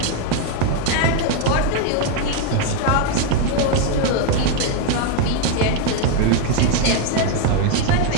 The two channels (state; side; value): different; both; correlation 0.01